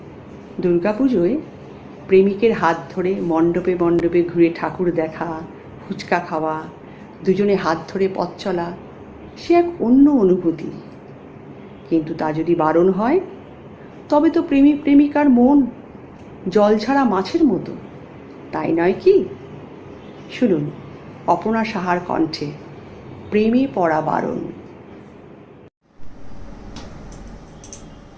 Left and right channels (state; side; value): identical; both; correlation 1.00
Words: দুর্গাপুজোয় প্রেমিকের হাত ধরে মণ্ডপে মণ্ডপে ঘুরে ঠাকুর দেখা, ফুচকা খাওয়া, দুজনে হাত ধরে পথ চলা, সে এক অন্য অনুভূতি। কিন্তু তা যদি বারণ হয়, তবে তো প্রেমিক প্রেমিকার মন জল ছাড়া মাছের মতো, তাই নয় কি? শুনুন অপনা সাহার কণ্ঠে প্রেমে পড়া বারণ।